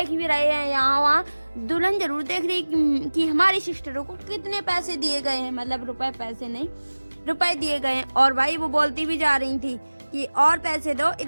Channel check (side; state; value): both; inverted; correlation -1.00